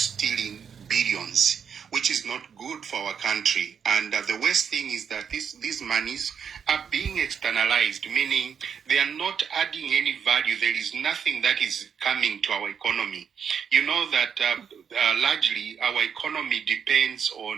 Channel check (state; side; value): quieter; left; 7.2 dB